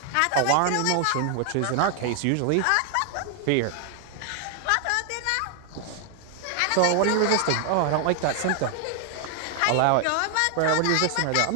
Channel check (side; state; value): both; different; correlation 0.00